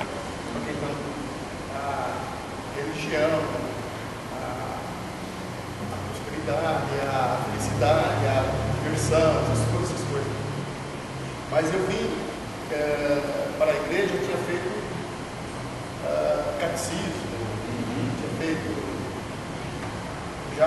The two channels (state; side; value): identical; both; correlation 1.00